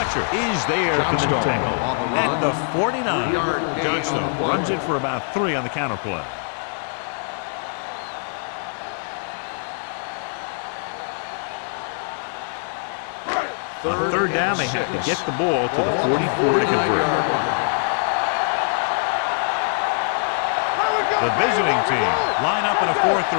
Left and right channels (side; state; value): right; silent; 64 dB below the other